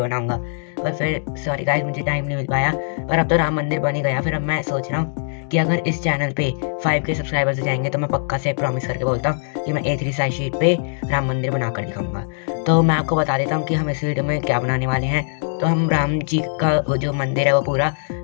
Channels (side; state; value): right; silent; digital silence